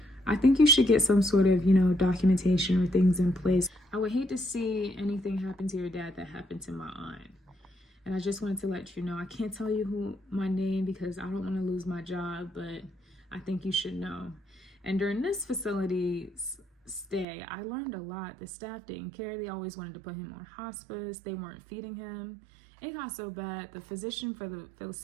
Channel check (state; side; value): drops out; left; at 17.2 s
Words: I think you should get some sort of, documentation or things in place. I would hate to see anything happen to your dad that happened to my aunt. And I just wanted to let you know, I can't tell you my name because I don't want to lose my job, but I think you should know. And during this facility stay, I learned a lot. The staff didn't care. They always wanted to put him on hospice. They weren't feeding him. It got so bad. The physician for the